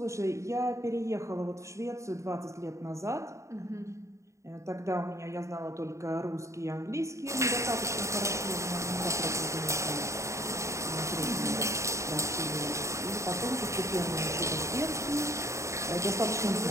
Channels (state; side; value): late; left; 0.14 ms